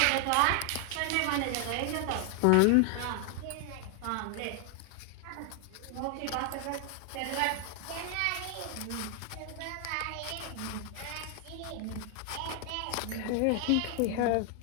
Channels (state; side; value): different; both; correlation 0.00